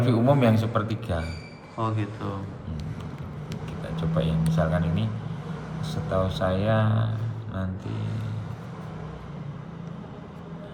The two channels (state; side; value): identical; both; correlation 1.00